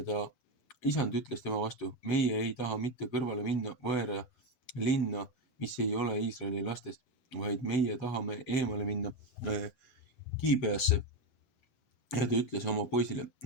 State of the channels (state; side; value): late; right; 8.2 ms